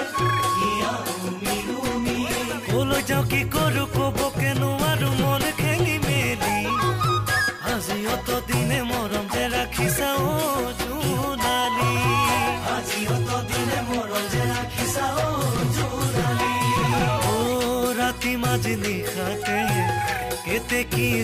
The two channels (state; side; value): identical; both; correlation 1.00